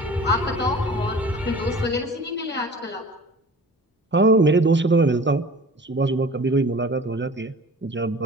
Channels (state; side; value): normal; both; correlation 0.43